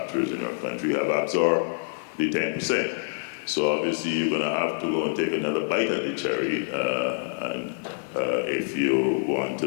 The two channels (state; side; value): silent; right; digital silence